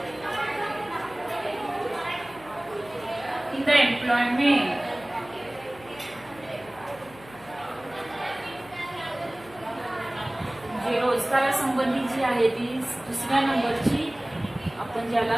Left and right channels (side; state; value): left; noise; hum, 21 dB below the sound